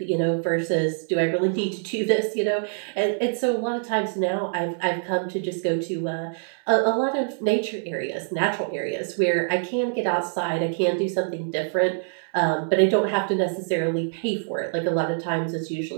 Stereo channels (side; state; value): left; silent; 62 dB below the other